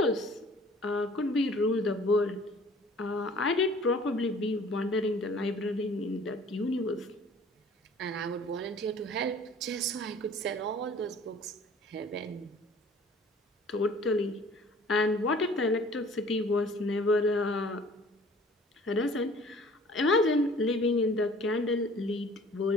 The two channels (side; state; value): both; normal; correlation 0.50